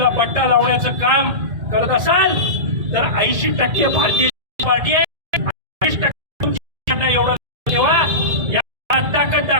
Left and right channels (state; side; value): late; left; 1.7 ms